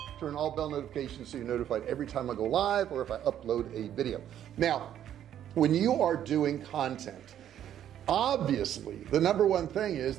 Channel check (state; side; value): quieter; left; 10.6 dB